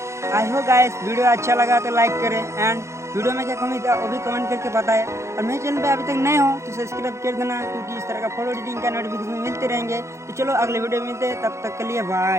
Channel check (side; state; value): left; late; 0.14 ms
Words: आई हो गाइस, वीडियो अच्छा लगा तो लाइक करें एंड वीडियो में क्या कमी था वो भी कमेंट करके बताएं। और मेरे चैनल पे अभी तक नए हो तो सब्सक्राइब कर देना, क्योंकि इस तरह का फोटो एडिटिंग का नोटिफिकेशन मिलते रहेंगे। तो चलो अगले वीडियो में मिलते हैं, तब तक के लिए